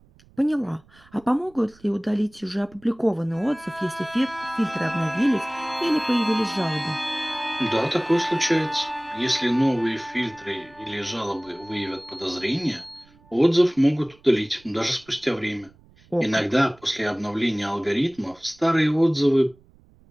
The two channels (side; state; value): right; noise; rumble, 29 dB below the sound